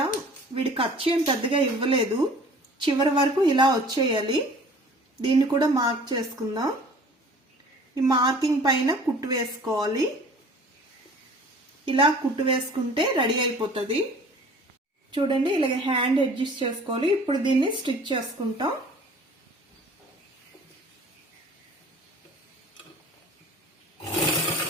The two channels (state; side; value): normal; both; correlation 0.48